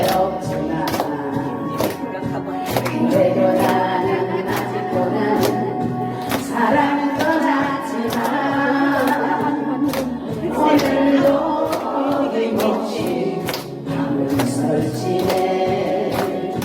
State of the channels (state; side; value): identical; both; correlation 1.00